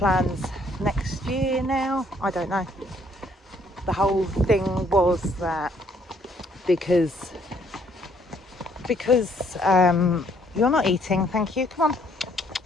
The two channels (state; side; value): normal; both; correlation 0.66